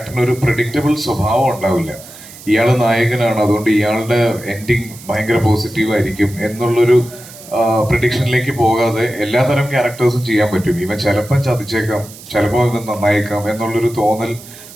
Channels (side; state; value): right; noise; hiss, 18 dB below the sound